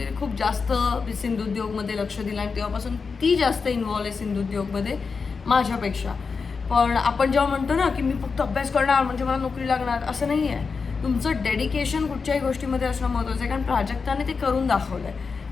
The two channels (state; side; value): quieter; right; 5.0 dB